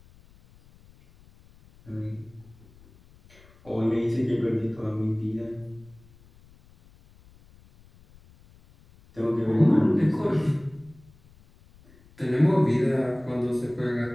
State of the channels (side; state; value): left; noise; rumble, 27 dB below the sound